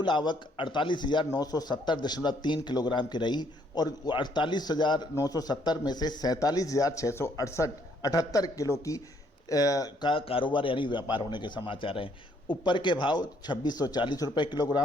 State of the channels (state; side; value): normal; both; correlation 0.68